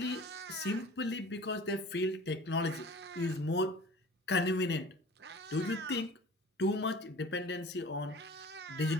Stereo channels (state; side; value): normal; both; correlation 0.43